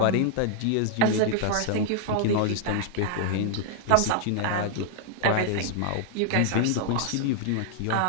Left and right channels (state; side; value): different; both; correlation -0.01